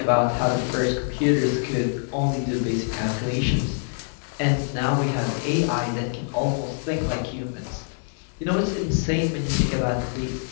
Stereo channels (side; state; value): right; silent; digital silence